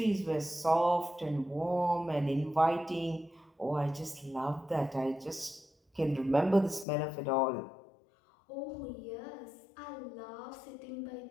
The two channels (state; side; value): drops out; right; at 6.9 s